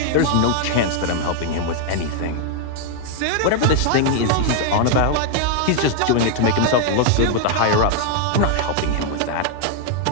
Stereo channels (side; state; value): both; different; correlation 0.00